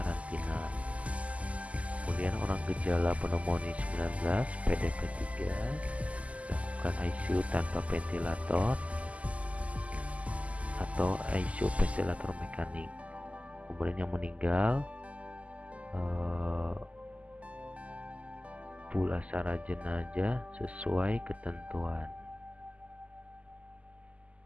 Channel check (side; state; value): left; late; 0.068 ms